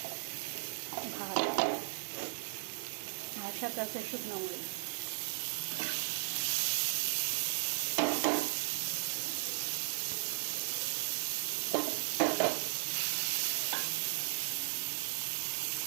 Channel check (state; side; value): silent; left; 54 dB below the other